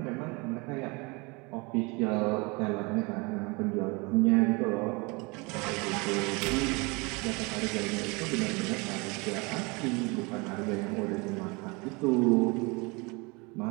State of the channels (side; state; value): left; quieter; 27.7 dB